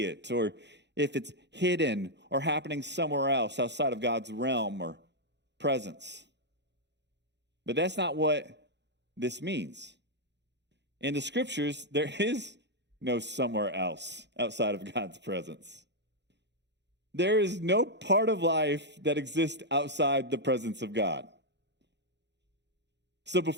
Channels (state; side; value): late; left; 0.51 ms